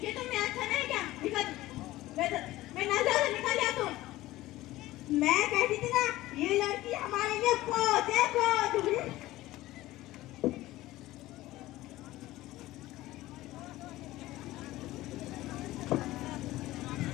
ये तुमने अच्छा नहीं किया। निकल, मैं नजर से निकल जा तुम। मैं कहती थी ना, ये लड़की हमारे लिए खोज है, खोज।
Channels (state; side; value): quieter; right; 16.9 dB